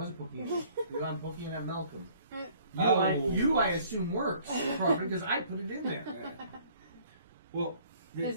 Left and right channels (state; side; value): inverted; both; correlation -0.57